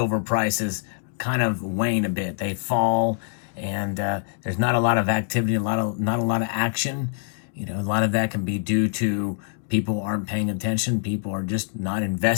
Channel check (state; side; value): silent; right; 62 dB below the other